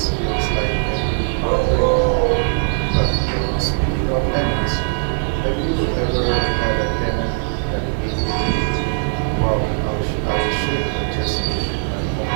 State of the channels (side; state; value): left; silent; 57 dB below the other